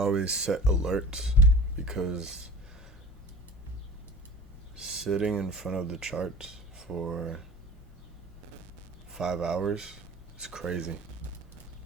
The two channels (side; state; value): both; normal; correlation 0.39